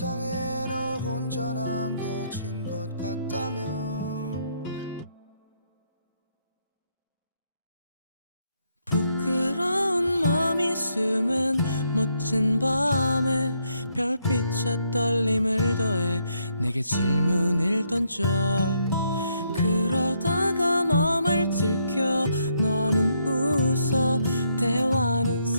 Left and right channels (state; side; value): inverted; both; correlation -0.74